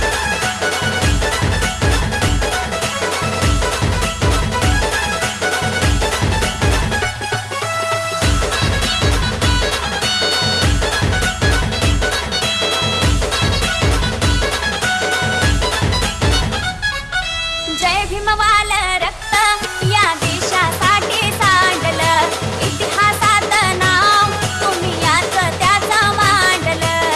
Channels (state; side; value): identical; both; correlation 1.00